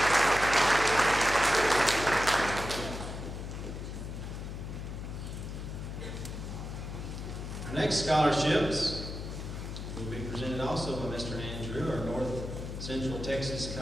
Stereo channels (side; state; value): left; noise; hum, 7 dB below the sound